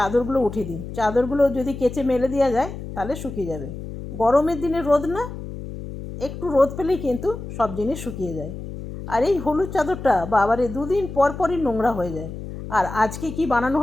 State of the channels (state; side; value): noise; left; hum, 10 dB below the sound